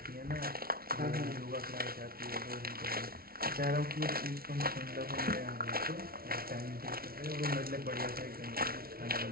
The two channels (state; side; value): late; left; 0.44 ms